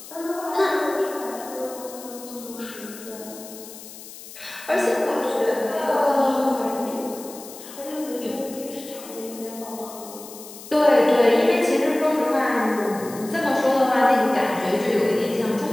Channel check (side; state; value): left; noise; hiss, 15 dB below the sound